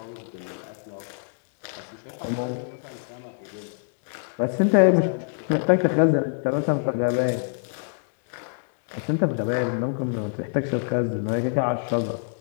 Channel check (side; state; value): right; silent; digital silence